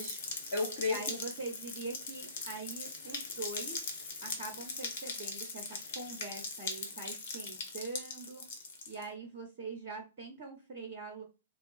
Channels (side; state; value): both; inverted; correlation -0.48